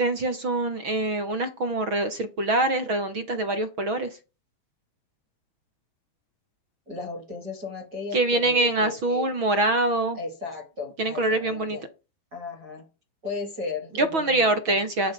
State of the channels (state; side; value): late; left; 6.2 ms